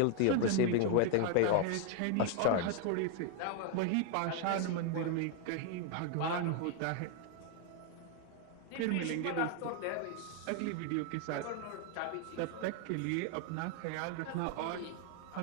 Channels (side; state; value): both; different; correlation 0.00